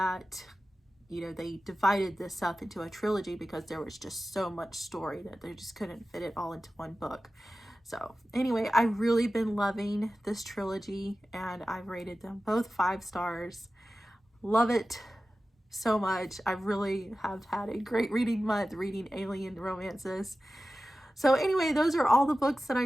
you know, they divided this up into a trilogy because there was just so much story that they just couldn't fit it all into one book. So anyway, I've really been loving this trilogy, and I've rated them both 5 stars. Love it so much. I really have had a great reading month reading alien romances. So anyway, those are all the books that I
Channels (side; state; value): both; normal; correlation 0.95